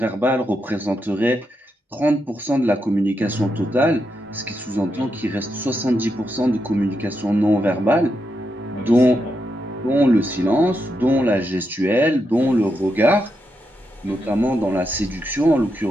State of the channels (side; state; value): both; normal; correlation 0.84